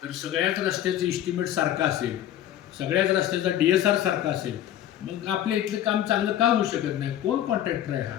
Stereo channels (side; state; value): right; quieter; 11.7 dB